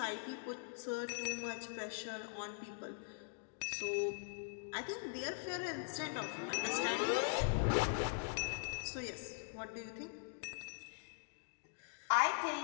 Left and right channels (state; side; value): silent; right; digital silence